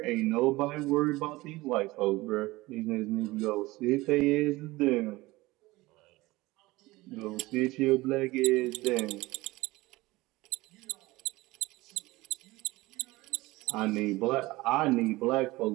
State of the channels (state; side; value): quieter; left; 20.2 dB